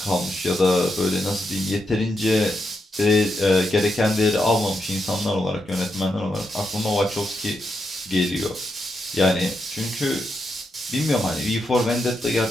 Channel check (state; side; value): normal; both; correlation 0.84